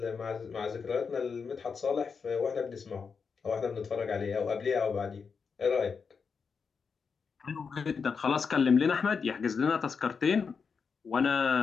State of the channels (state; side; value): quieter; right; 5.6 dB